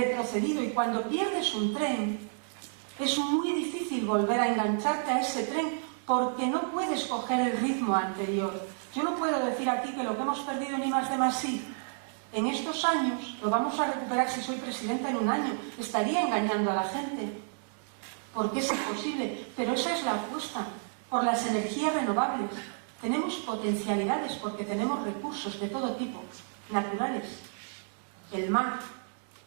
y cuando pierdes un tren es muy difícil volver a engancharte a ese tren porque no puedes coger el ritmo anterior. Yo no puedo decir aquí que lo que hemos perdido en I+D+I en estos años lo vamos a recuperar si soy presidenta en un año. Estaría engañando a la gente porque es imposible, pero esa es la apuesta por las energías renovables. Tenemos potencialidades porque tenemos recursos de todo tipo, naturales, el mar,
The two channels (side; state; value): left; silent; digital silence